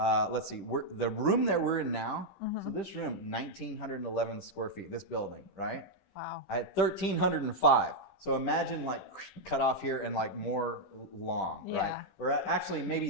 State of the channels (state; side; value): late; right; 15 ms